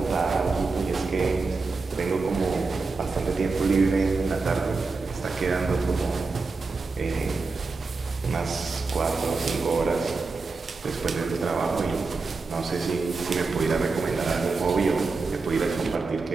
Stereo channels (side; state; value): left; quieter; 4.1 dB